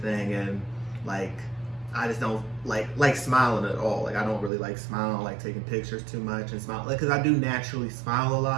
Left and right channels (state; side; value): drops out; left; at 4.5 s